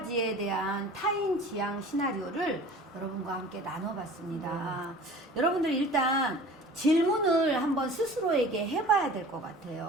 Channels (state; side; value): normal; both; correlation 0.43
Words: 대한 타인 지향 시나리오를 여러분과 함께 나눠봤습니다. 여러분들 일단 질문을 한번 스스로에게 해봐야 될 것